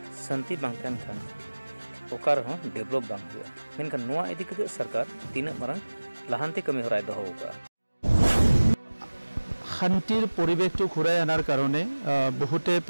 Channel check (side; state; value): both; inverted; correlation -1.00